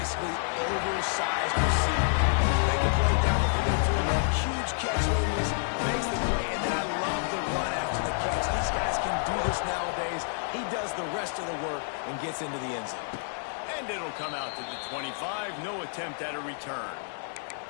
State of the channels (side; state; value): right; silent; digital silence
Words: Gets into the end zone. And it'll come out to the 25. No attempt at a return.